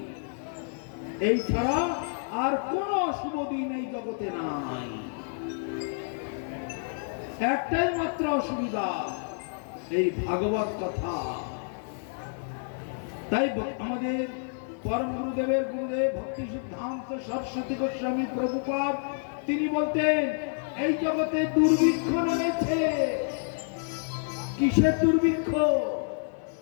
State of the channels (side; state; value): right; silent; digital silence